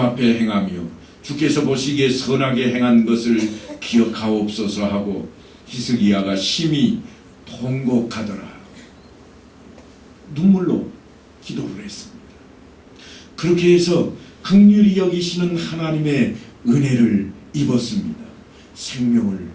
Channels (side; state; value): both; identical; correlation 1.00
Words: 행하며 주께서 보시기에 선하게 행한 것을 기억하옵소서 하고 히스기야가 심히 통곡하더라. 눈물로 기도를 했습니다. 그렇게 해서 긍휼히 여기시는 하나님의 은혜를 입었습니다. 생명을